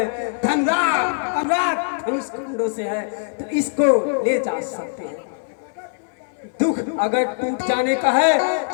धनराज धनुष कुंडों से है तो इसको ले जा सकते हैं। दुख अगर टूट जाने का है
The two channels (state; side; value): silent; right; 64 dB below the other